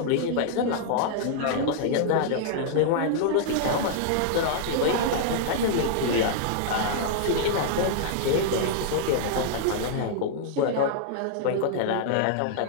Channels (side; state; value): both; different; correlation -0.01